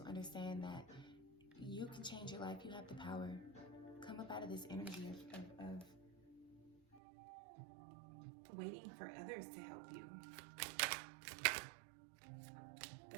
understand that you can change your life. You have the power. Come up out of this energy of waiting for others to help you.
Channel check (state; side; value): drops out; left; at 7.0 s